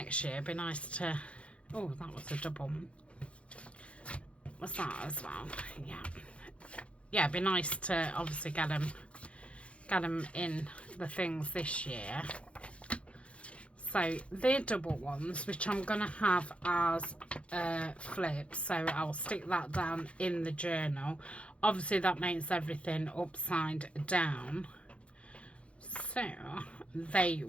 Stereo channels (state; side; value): late; right; 0.061 ms